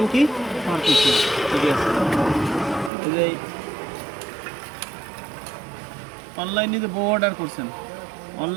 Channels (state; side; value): drops out; left; at 2.9 s